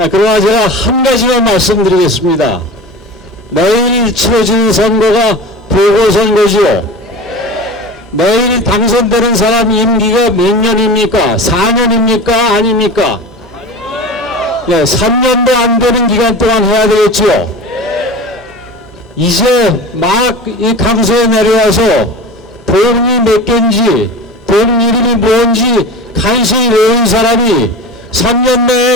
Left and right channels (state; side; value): normal; both; correlation 0.33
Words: 그러나 제가 한 가지만 말씀드리겠습니다. 내일 치러지는 선거가 보궐선거지요. 내일 당선되는 사람 임기가 몇 년입니까? 4년입니까? 아닙니까? 네, 3년도 안 되는 기간 동안 해야 되겠지요. 이제 막 이 강서에 내려와서 동이 몇 개인지 동 이름이 뭔지 간신히 외운 사람이 3년